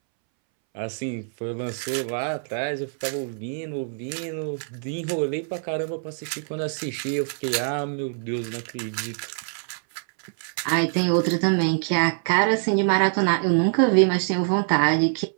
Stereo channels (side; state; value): left; silent; 62 dB below the other